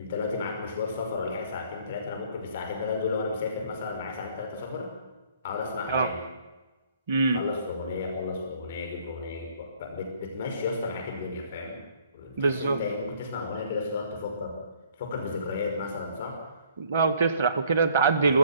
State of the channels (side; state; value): both; inverted; correlation -0.59